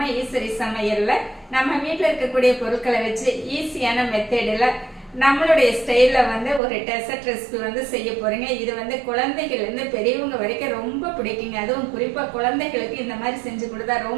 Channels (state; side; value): drops out; left; at 6.6 s